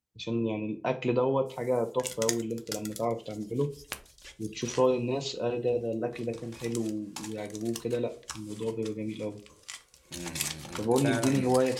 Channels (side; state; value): both; identical; correlation 1.00